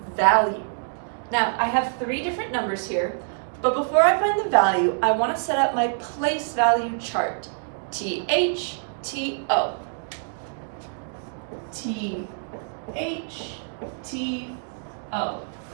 value. Now, I have 3 different numbers here, but before I find the value, I want to set up my place value chart. TH, TO. TH, TO.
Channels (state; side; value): silent; left; digital silence